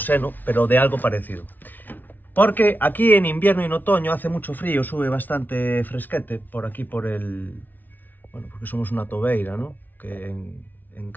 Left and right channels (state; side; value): late; right; 0.085 ms